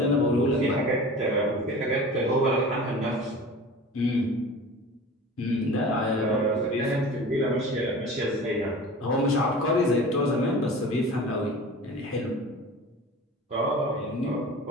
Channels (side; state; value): both; normal; correlation 0.37